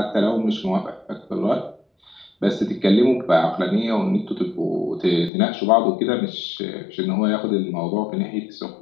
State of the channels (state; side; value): drops out; right; at 5.3 s